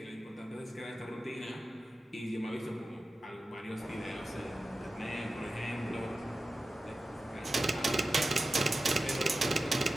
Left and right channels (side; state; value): both; normal; correlation 0.94